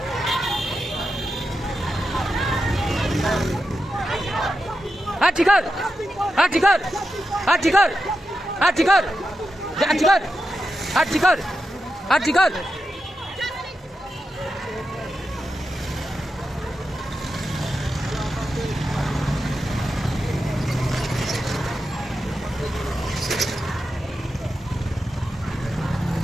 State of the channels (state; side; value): normal; both; correlation 0.88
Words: Archibald! Archibald! Archibald! Archibald! Archibald! Archibald! Archibald!